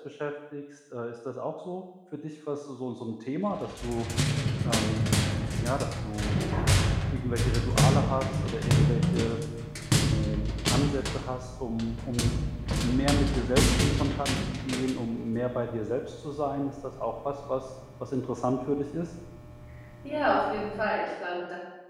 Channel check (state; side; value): identical; both; correlation 1.00